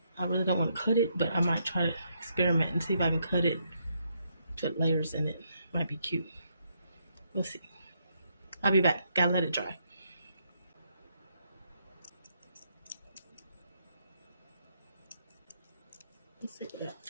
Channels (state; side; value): inverted; both; correlation -0.76